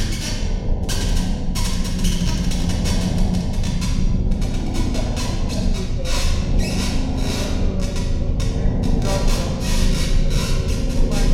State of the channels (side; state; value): both; identical; correlation 1.00